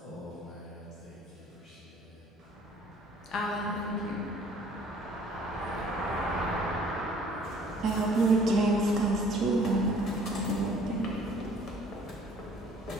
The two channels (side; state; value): both; normal; correlation 0.55